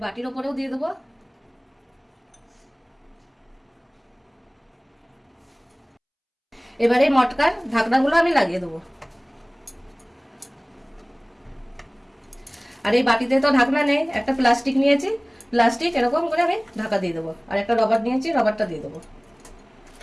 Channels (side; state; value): both; identical; correlation 1.00